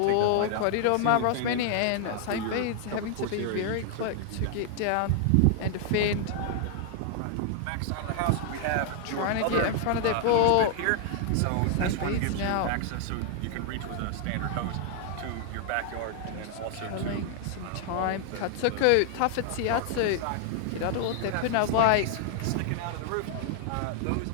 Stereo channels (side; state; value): both; different; correlation 0.00